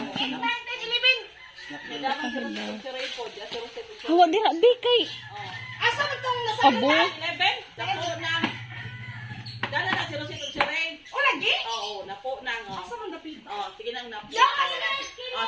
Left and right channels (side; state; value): both; identical; correlation 1.00